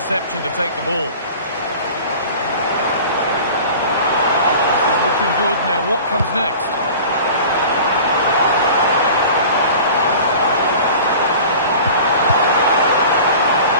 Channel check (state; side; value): inverted; both; correlation -0.40